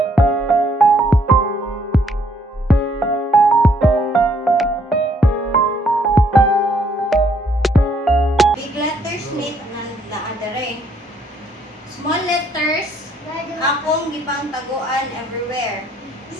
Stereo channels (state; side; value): normal; both; correlation 0.68